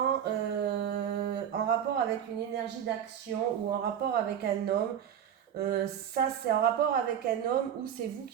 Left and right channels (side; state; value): left; quieter; 9.2 dB